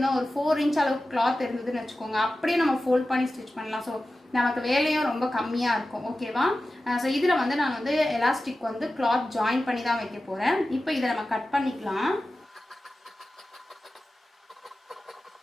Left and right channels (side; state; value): both; normal; correlation 0.94